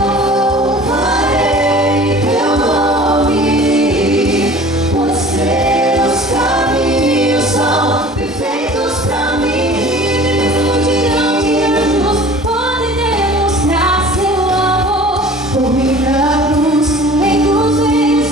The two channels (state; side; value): normal; both; correlation 0.45